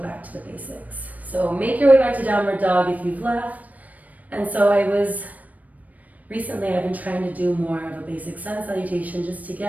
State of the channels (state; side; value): late; left; 0.074 ms